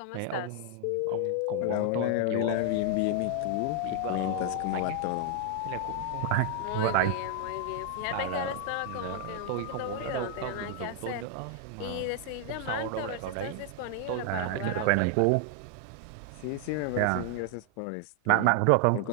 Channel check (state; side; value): different; both; correlation 0.00